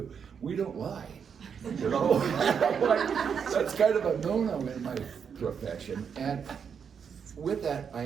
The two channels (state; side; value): quieter; left; 7.0 dB